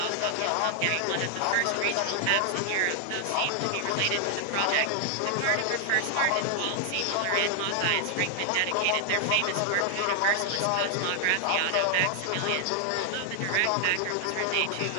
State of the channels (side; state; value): both; different; correlation 0.00